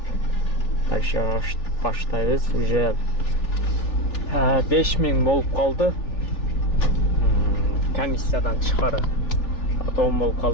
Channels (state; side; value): late; right; 3.4 ms